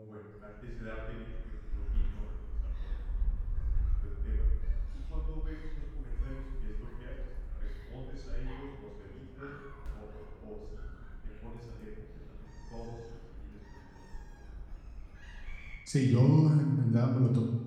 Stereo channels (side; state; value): both; identical; correlation 1.00